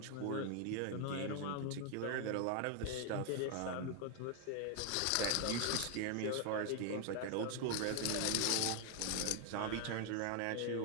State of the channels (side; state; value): both; different; correlation 0.00